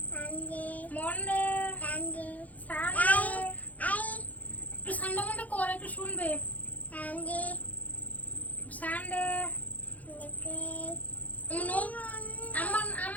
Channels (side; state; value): right; late; 0.077 ms